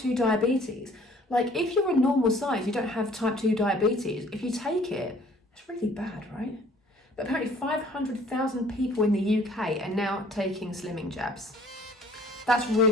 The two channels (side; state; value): both; normal; correlation 0.55